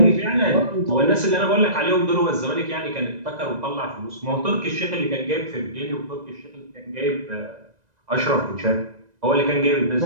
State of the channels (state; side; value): late; left; 2.0 ms